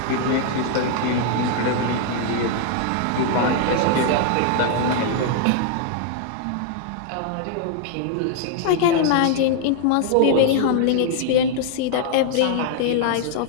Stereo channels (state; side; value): different; both; correlation 0.00